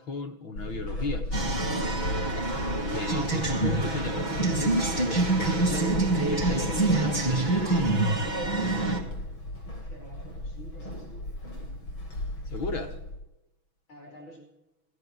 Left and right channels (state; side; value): late; right; 6.1 ms